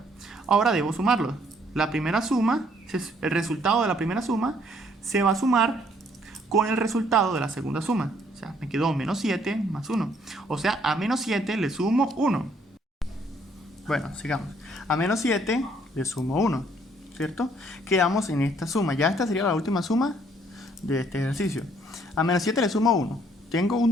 Ahora debo sumarlos. La primera suma, el resultado de la primera suma, se va a sumar con el resultado de la segunda suma. O sea, me quedó menos 7 más 1. O sea, a menos 7 le sumo 1. Bueno, sigamos. A menos 7 le sumo 1, ¿cierto? Quedamos en esta suma. Ya esta sería la última suma de este ejercicio. A menos 7 le sumo 1. Tengo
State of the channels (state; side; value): normal; both; correlation 0.65